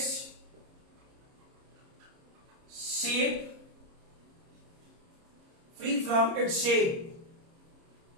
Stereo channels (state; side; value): late; left; 30 ms